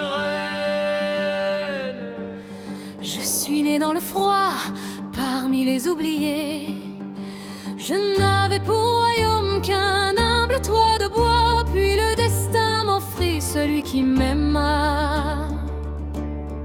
Je suis né dans le froid, parmi les oubliés. Je n'avais pour royaume qu'un humble toit de bois. Puis le destin m'offrit celui qui m'aima.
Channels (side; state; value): both; identical; correlation 1.00